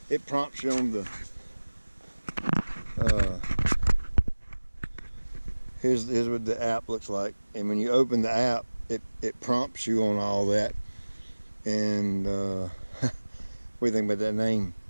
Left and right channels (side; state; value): both; inverted; correlation -1.00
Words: It prompts you on the here's what the app looks like, and when you open the app, it prompts you on all that. And what do you think about that name?